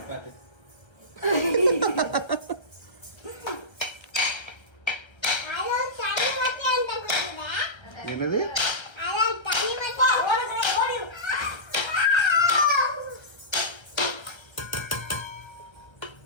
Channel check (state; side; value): late; right; 1.3 ms